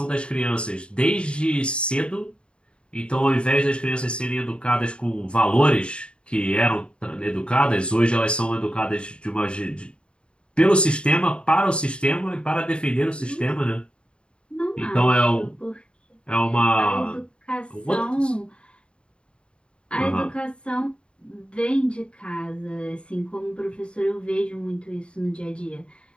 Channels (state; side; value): late; right; 0.055 ms